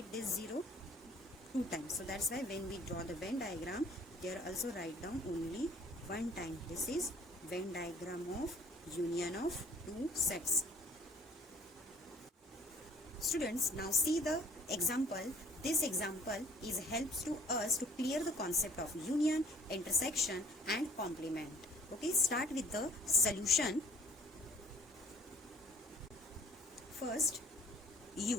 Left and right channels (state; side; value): normal; both; correlation 0.56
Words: this 0 two times. So that's why when we draw the Venn diagram, there also write down only one time. This is Venn diagram of union of two sets. Students, now see the example. This example helps to us to clear the concept of union, intersection and complement. Okay, start with the solution. First,